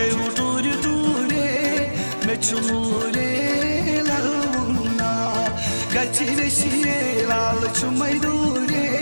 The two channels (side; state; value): both; inverted; correlation -1.00